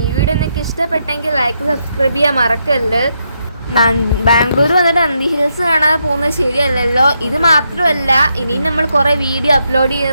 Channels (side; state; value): both; inverted; correlation -0.81